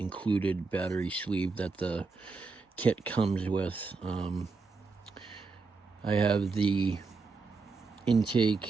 battery sleeve that the kit comes with. I have the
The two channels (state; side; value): quieter; left; 4.3 dB